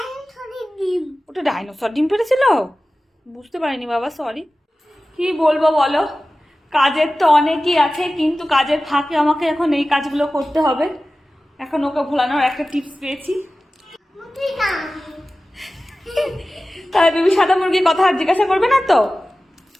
নিই। ওটা ডাইনোসর ডিম পেড়েছিল? বুঝতে পারিনি বাবা, সরি। কি বলবো বলো, কাজের তো অনেকই আছে, কিন্তু কাজের ফাঁকে আমাকে এখন এই কাজগুলো করতে হবে। এখন ওকে ভোলানোর একটা টিপস পেয়েছি। তাহলে বেবি সাদা মুরগির কথা আর জিজ্ঞাসা করবে না তো?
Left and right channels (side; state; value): both; normal; correlation 0.96